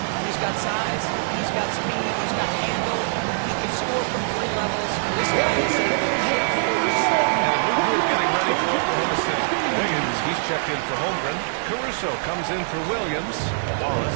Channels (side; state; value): left; silent; digital silence